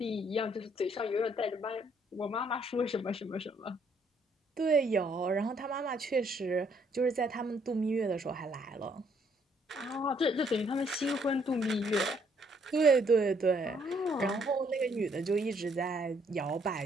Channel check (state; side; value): normal; both; correlation 0.67